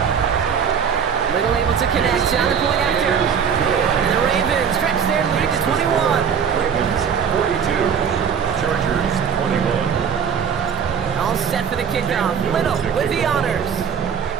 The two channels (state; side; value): quieter; left; 7.2 dB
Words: Little able to connect on the point after. And the Ravens stretch their lead to 21. Ravens 42, Chargers 21. All set for the kickoff. Little with the honors.